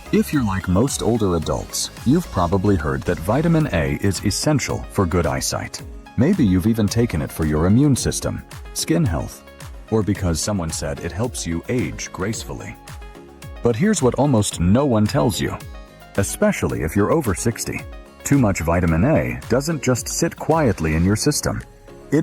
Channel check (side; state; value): both; identical; correlation 1.00